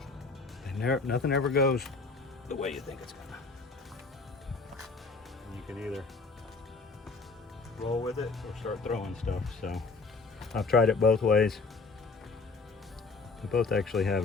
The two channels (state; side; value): quieter; right; 4.1 dB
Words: and nothing ever goes the way you think it's gonna. You can either roll with it or start throwing stuff. So I've tried it both ways. They both actually have